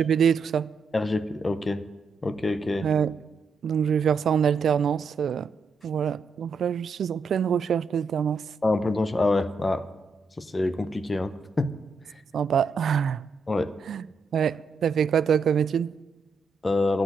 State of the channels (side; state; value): left; quieter; 3.8 dB